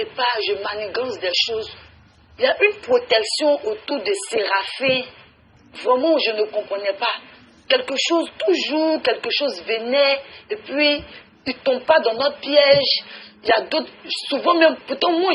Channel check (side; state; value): both; identical; correlation 1.00